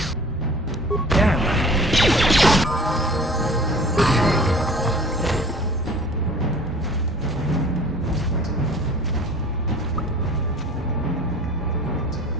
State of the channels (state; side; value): normal; both; correlation 0.46